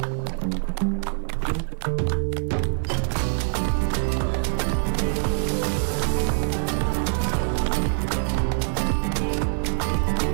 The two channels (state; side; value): silent; left; digital silence